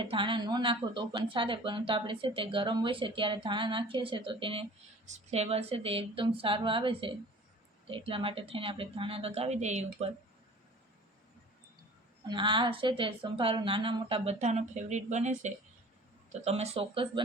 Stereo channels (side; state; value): both; normal; correlation 0.45